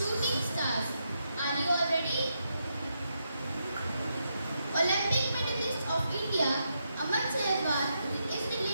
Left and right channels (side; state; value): both; inverted; correlation -0.82